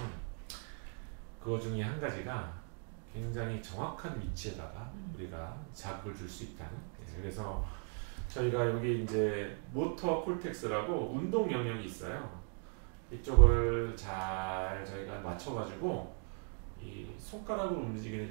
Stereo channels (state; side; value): quieter; left; 39.9 dB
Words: 그거 중에 한 가지가 굉장히 정확한 위치에다가 우리가 자극을 줄 수 있다는. 그래서 저희가 여기 이제 모터 콜텍스라고 운동 영역이 있어요. 이쪽을 잘 저희가 맞춰가지고 이 손가락으로 움직이는